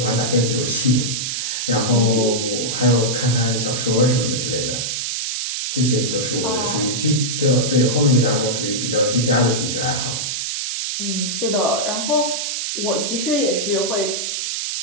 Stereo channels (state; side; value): noise; right; hiss, 2 dB below the sound